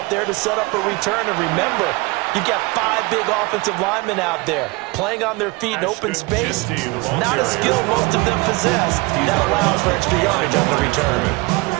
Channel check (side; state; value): left; quieter; 25.5 dB